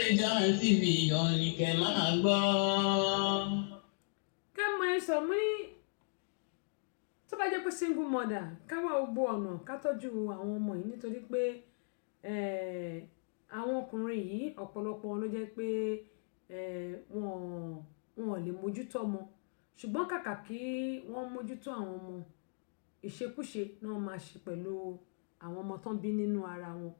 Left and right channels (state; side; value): silent; right; digital silence